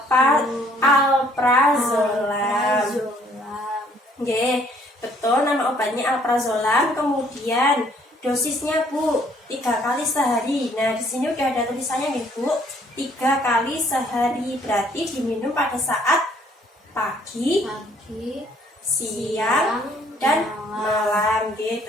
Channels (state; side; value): normal; both; correlation 0.62